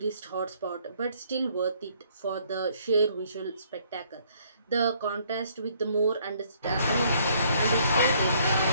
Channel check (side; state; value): both; inverted; correlation -0.65